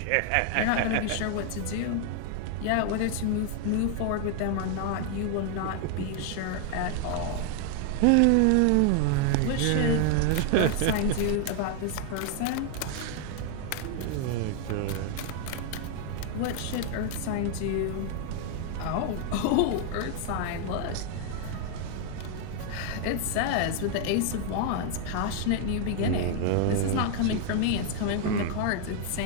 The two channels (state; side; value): different; both; correlation 0.00